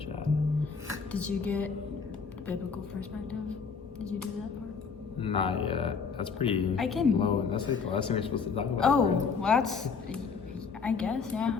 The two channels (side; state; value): right; quieter; 5.5 dB